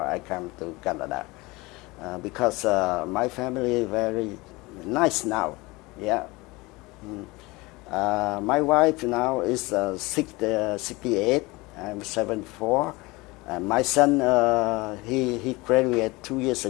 I come to Canada, because my family is very nice now. Yeah. My wife now is 68. I'm 74. My son, he graduated 2 years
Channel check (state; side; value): quieter; right; 23.0 dB